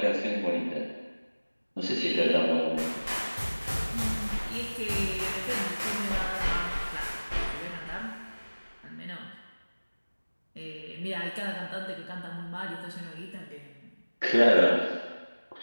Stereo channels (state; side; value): inverted; both; correlation -1.00